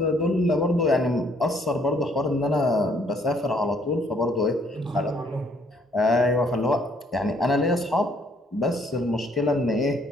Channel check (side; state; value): both; normal; correlation 0.65